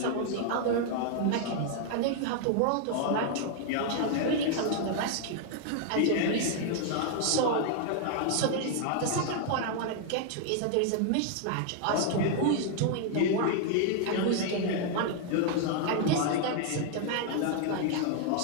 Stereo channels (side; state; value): both; different; correlation 0.00